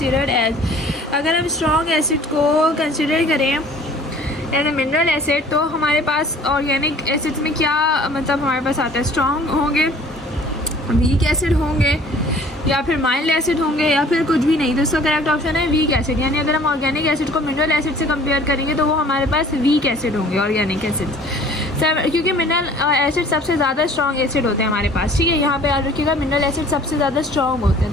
as, अगर हम स्ट्रॉन्ग एसिड को कंसिडर करें एज ए मिनरल एसिड तो हमारे पास ऑर्गेनिक एसिड्स में क्या मतलब हमारे पास आता है, स्ट्रॉन्ग होंगे, वीक एसिड होंगे या फिर माइल्ड एसिड होंगे या फिर कुछ भी नहीं। तो इसका करेक्ट ऑप्शन है वीक एसिड, यानी अगर हम ऑर्गेनिक एसिड को मिनरल एसिड से कंपेयर करेंगे तो वो हमारे पास वीक एसिड होंगे ऑर्गेनिक एसिड्स, क्योंकि मिनरल एसिड सबसे ज़्यादा स्ट्रॉन्ग एसिड होते हैं हमारे पास। ठीक है, यहाँ पे याद रखिएगा मिनरल एसिड सबसे ज़्यादा स्ट्रॉन्ग होते हैं,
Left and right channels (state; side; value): normal; both; correlation 0.51